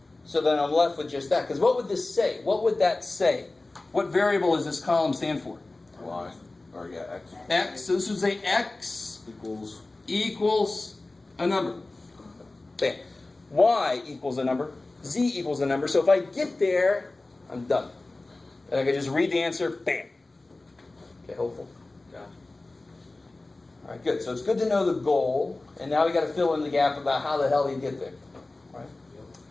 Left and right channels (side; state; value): right; quieter; 3.1 dB